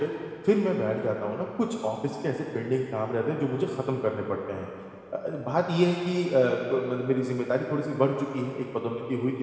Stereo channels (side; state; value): both; identical; correlation 1.00